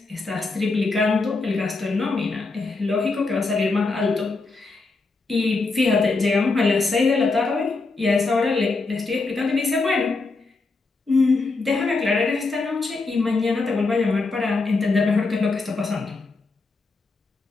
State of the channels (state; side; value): quieter; right; 3.7 dB